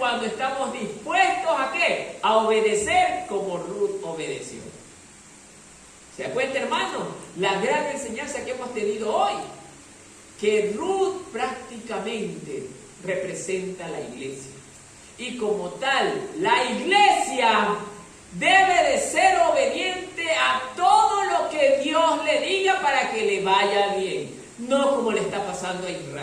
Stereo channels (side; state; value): both; identical; correlation 1.00